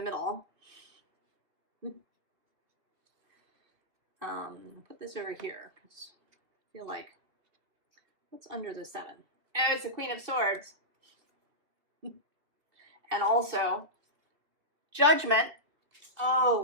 middle. Put this over here because I feel like, what's under the 7? Oh, it's the Queen of Swords. And also Judgment.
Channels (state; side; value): late; left; 2.5 ms